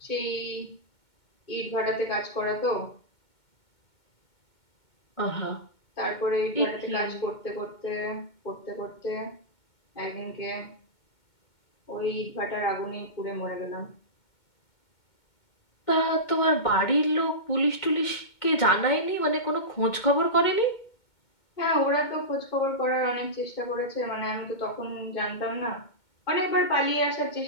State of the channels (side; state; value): right; late; 2.2 ms